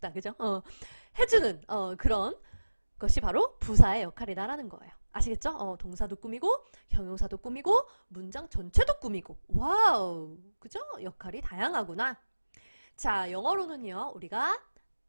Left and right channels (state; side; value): inverted; both; correlation -1.00